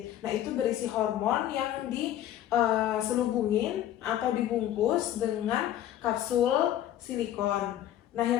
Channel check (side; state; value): right; quieter; 12.0 dB